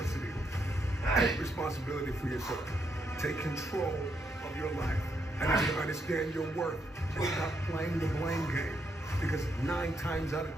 Take responsibility for yourself. Take control of your life. I need you to understand your worth and stop playing the blame game. Because 9 times out of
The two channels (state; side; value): normal; both; correlation 0.78